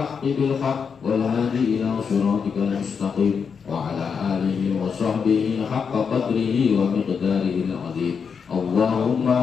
بالحق والهادي إلى صراطك المستقيم وعلى آله وصحبه حق قدره ومقداره العظيم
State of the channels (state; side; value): quieter; right; 6.2 dB